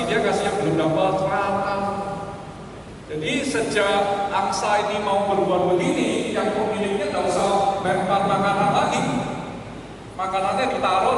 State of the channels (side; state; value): both; identical; correlation 1.00